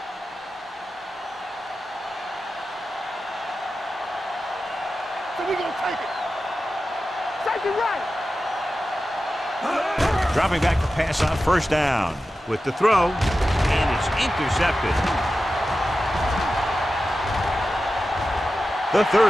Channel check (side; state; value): both; normal; correlation 0.93